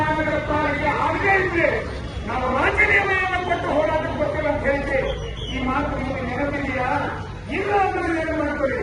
ಪಾಲಿಕೆ ಆಗೇ ಇದ್ರೆ ನಾವು ರಾಜೀನಾಮೆಯನ್ನು ಕೊಟ್ಟು ಹೋರಾಟಕ್ಕೆ ಬರ್ತೀವಿ ಅಂತ ಹೇಳಿದ್ರಿ. ಈ ಮಾತು ನಿಮಗೆ ನೆನಪಿದೆಯಾ? ಇಲ್ಲ ಅಂದ್ರೆ ಏನು ಮಾಡ್ಕೊಳ್ಳಿ.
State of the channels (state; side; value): identical; both; correlation 1.00